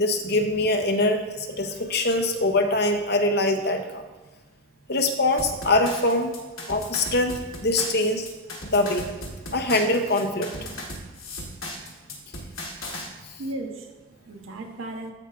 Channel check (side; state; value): both; normal; correlation -0.05